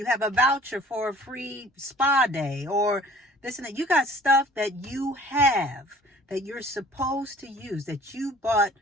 have a voucher for a free spa day, or this and that. You got stuff that you have that you're supposed to use, that you bought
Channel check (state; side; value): normal; both; correlation 0.51